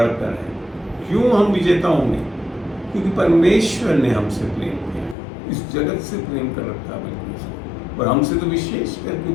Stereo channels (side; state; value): right; drops out; at 5.2 s